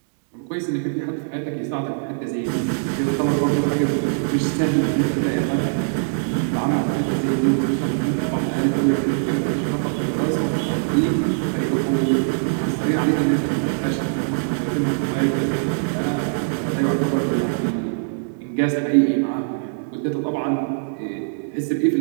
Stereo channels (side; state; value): left; silent; digital silence